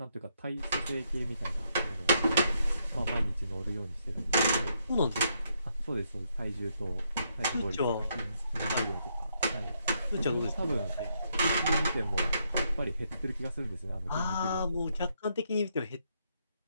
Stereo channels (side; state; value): both; inverted; correlation -0.75